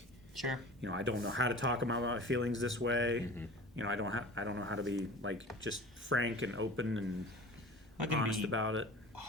sure, I don't know how to talk about my feelings this way. I don't know how to be like just frank and open and honest about it.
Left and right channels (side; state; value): both; normal; correlation 0.40